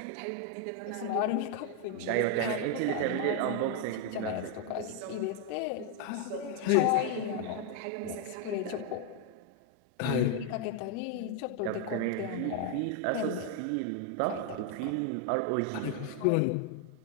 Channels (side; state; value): both; different; correlation 0.01